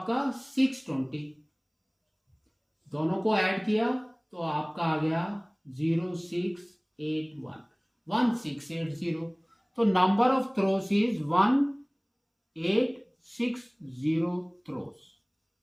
620, दोनों को ऐड किया तो आपका आ गया 0681, 1680, तो number of throws is 1860 throws.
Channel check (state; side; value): identical; both; correlation 1.00